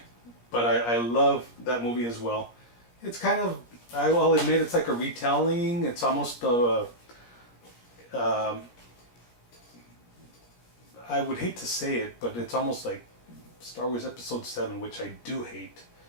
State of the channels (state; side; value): late; right; 17 ms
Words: but I love that movie as well. It's kind of, I will admit, it's like a retelling. It's almost I would hate to say it, but it's almost like Star Wars Episode 7, which I do hate.